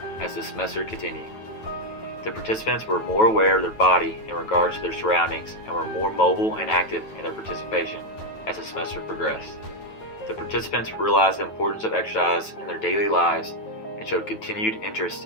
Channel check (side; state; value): right; late; 9.2 ms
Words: as the semester continued. The participants were more aware of their body in regards to their surroundings and were more mobile and active in their participation as the semester progressed. The participants realized the importance of exercise in their daily lives and showed continued